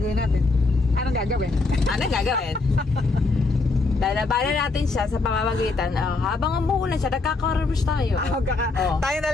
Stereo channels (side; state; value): right; quieter; 3.7 dB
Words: natin? Anong gagawin? Lalabanan natin siya sa pamamagitan. Habang umuulan siya, nagkaka-rush tayo. Tayo na